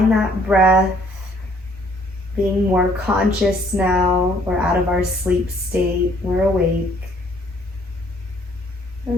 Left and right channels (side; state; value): both; normal; correlation 0.62